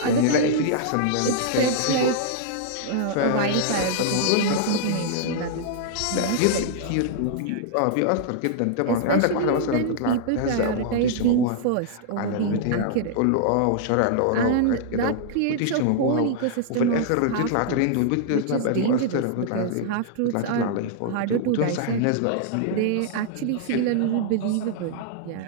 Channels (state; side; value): different; both; correlation -0.01